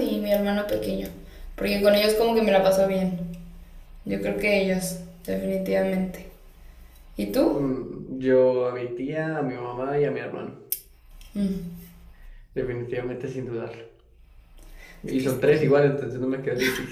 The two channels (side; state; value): both; identical; correlation 1.00